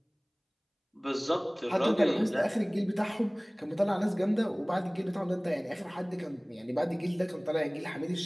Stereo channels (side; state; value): both; identical; correlation 1.00